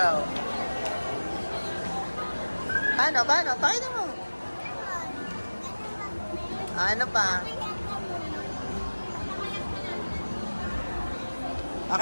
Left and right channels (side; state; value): both; inverted; correlation -1.00